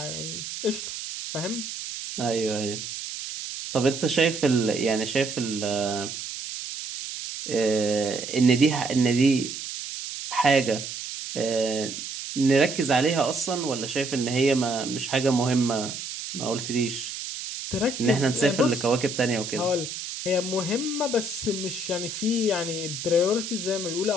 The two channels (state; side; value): noise; right; hiss, 7 dB below the sound